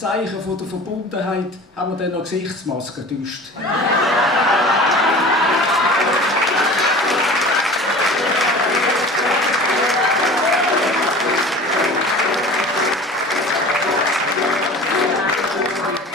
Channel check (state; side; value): normal; both; correlation 0.40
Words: von der Verbundenheit haben wir dann noch Gesichtsmasken getauscht.